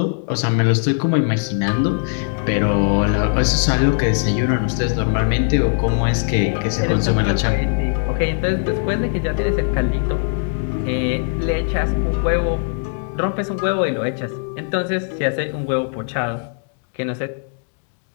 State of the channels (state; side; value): silent; right; 66 dB below the other